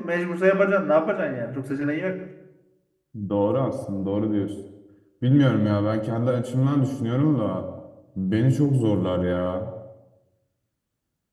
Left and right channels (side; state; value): both; identical; correlation 1.00